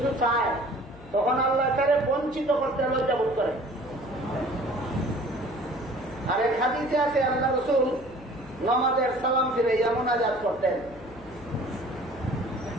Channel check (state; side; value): noise; left; hum, 19 dB below the sound